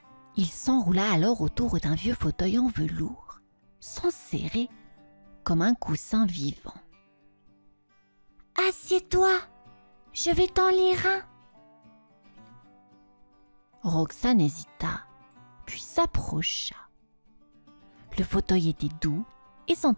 Il s'enroula alors autour d'un vieux fauteuil en velours, s'enserrer comme un coussin vivant. « Assieds-toi, je vais t'en lire un. » Roxane hésita, puis s'approcha. Le fauteuil était doux et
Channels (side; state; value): both; inverted; correlation -1.00